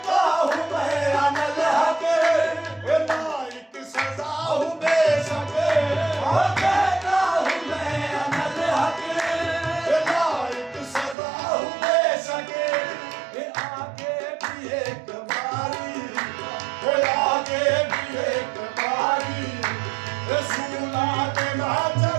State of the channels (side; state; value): left; drops out; at 11.2 s